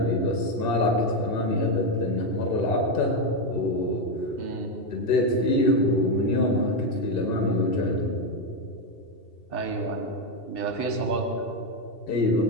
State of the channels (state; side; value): late; right; 2.7 ms